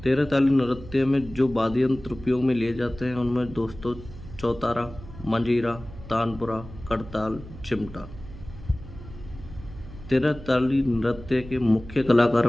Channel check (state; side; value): noise; right; hum, 15 dB below the sound